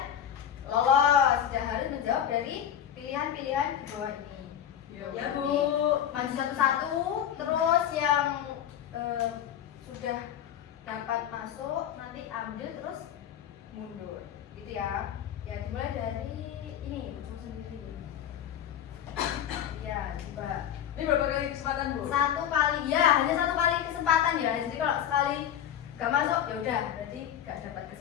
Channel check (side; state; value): right; quieter; 9.8 dB